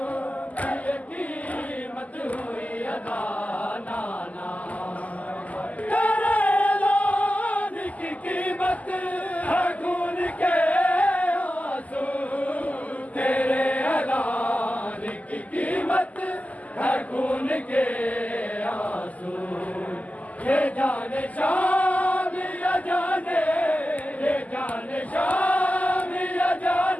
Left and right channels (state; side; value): late; right; 0.075 ms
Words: कीमत हुई अदा, तेरे ऐलान की कीमत है खून के आंसू, तेरे ऐलान की कीमत है खून के आंसू, ये जाने शाम या जाने, ये जाने शाम या